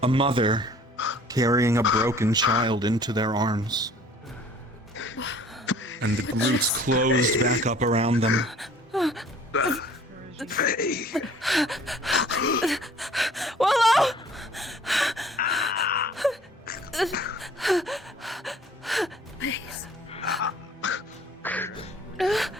a mother carrying a broken child into their arms. And the roots closed back up around them. Willow! Please.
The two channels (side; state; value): both; normal; correlation 0.53